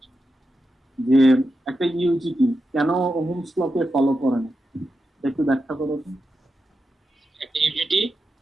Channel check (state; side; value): normal; both; correlation 0.88